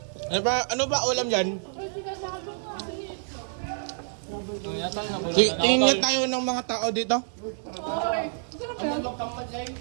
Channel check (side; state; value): left; silent; 60 dB below the other